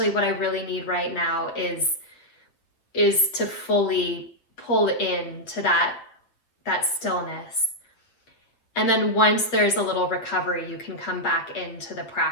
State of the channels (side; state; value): right; late; 8.5 ms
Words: what I really need right now is is to fully pull into that stillness. And then once there's a little recovery, you can come back into the